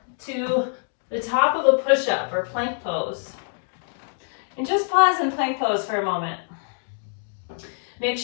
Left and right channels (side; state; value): right; silent; 62 dB below the other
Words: to the top of a push-up or plank pose. And just pause in plank pose for a moment. Make